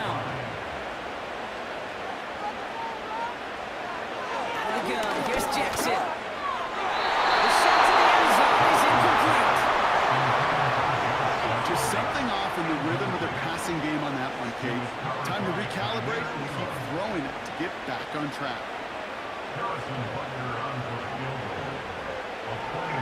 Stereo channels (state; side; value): identical; both; correlation 1.00